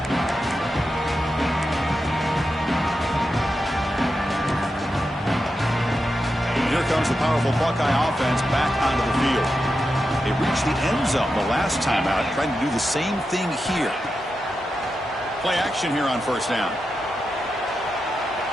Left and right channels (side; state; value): both; normal; correlation 0.89